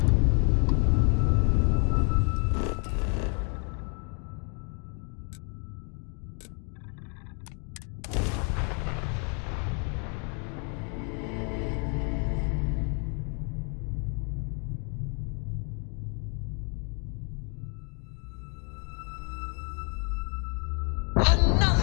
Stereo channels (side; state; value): right; quieter; 38.7 dB